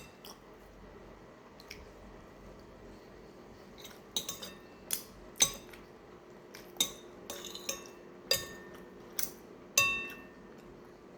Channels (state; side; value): identical; both; correlation 1.00